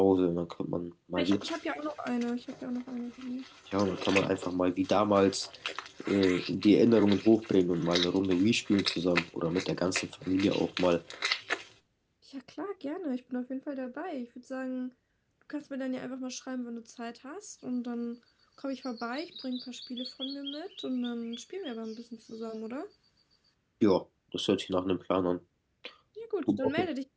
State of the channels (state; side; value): identical; both; correlation 1.00